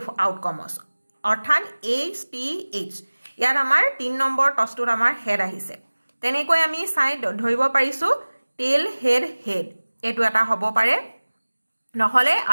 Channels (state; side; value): inverted; both; correlation -1.00